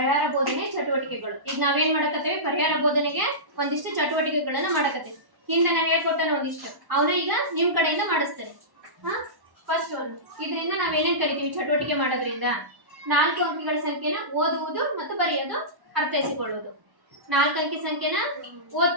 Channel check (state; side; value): late; left; 1.1 ms